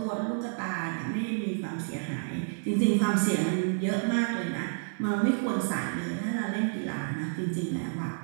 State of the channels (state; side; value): silent; left; 58 dB below the other